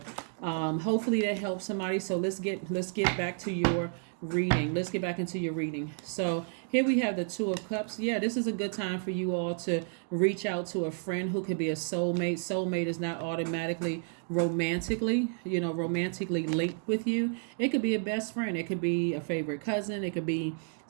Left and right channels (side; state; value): left; silent; 57 dB below the other